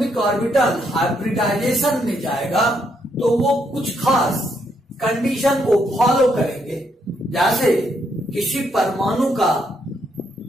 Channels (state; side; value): normal; both; correlation 0.75